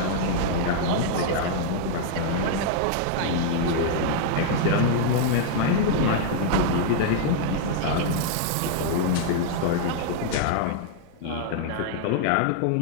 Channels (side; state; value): both; different; correlation -0.01